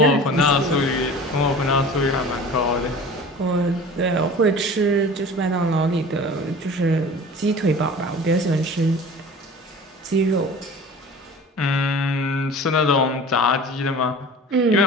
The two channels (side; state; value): both; normal; correlation 0.40